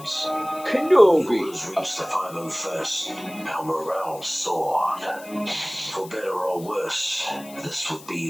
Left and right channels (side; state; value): left; noise; hiss, 19 dB below the sound